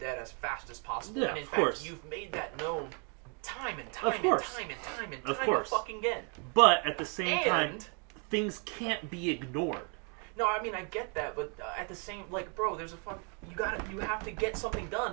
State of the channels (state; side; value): quieter; left; 37.6 dB